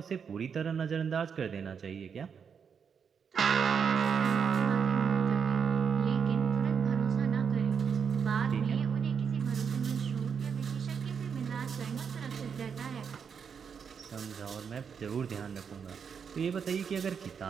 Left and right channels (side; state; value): left; quieter; 6.7 dB